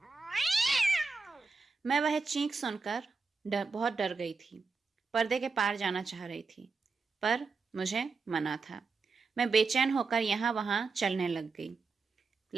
मैं वह चीख सुनकर बहुत डर गई थी। पर्दे के पार जाना चाह रही थी, पर मुझे मना था। मैं बेचैन होकर यहाँ वहाँ चलने लग गई।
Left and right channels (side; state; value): left; quieter; 4.5 dB